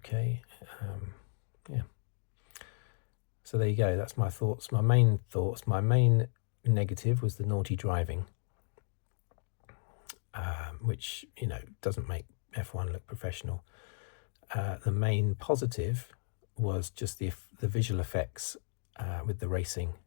Yeah. So there you go. That's my thoughts. My main negative was the naughty driving, which, you know, doesn't make F1 look professional. The main positive was just the visual effects with the racing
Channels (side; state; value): right; silent; digital silence